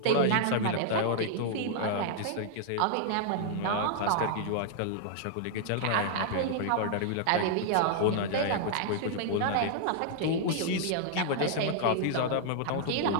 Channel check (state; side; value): different; both; correlation -0.01